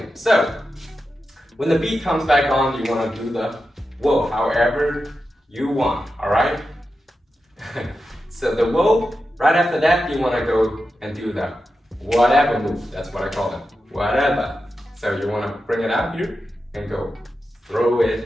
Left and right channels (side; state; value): both; normal; correlation 0.90